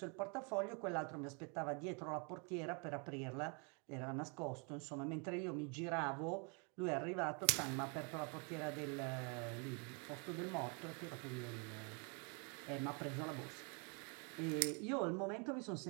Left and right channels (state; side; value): quieter; left; 35.4 dB